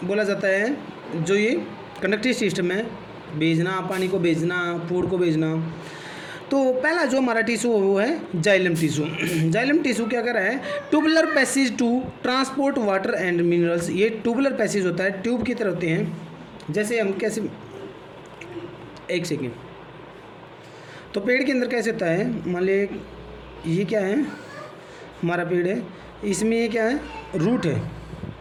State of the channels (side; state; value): both; identical; correlation 1.00